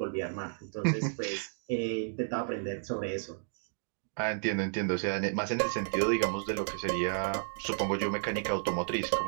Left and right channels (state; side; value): silent; left; digital silence